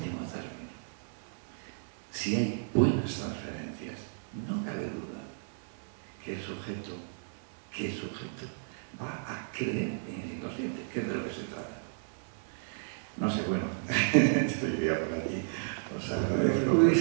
término, si hay buenas transferencias, no cabe duda que el sujeto va a creer en el inconsciente, que es de lo que se trata. No sé, bueno, estoy ya por aquí, os agradezco. Lo que tú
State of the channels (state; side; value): silent; left; digital silence